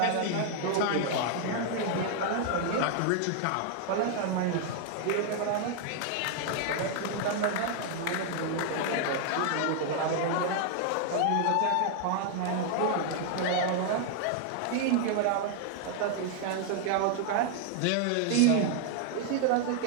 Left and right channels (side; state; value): both; different; correlation 0.00